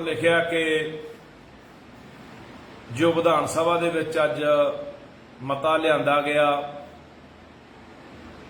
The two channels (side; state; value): both; identical; correlation 1.00